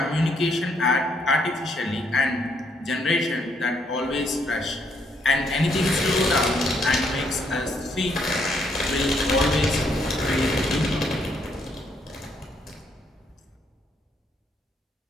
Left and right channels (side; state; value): both; normal; correlation 0.72